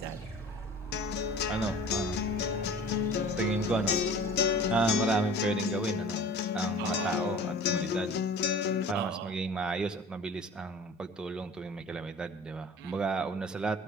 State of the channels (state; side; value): normal; both; correlation 0.43